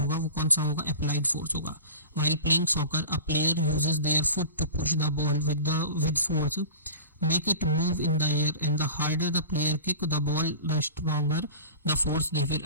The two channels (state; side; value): inverted; both; correlation -0.36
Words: वो कौन सा होगा? अप्लाइड फोर्स होगा। While playing soccer a player uses their foot to push the ball with force, make it move in the air, and the harder the player kick the ball, the stronger the force they